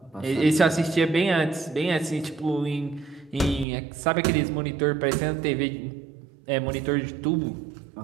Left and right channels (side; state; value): left; drops out; at 3.7 s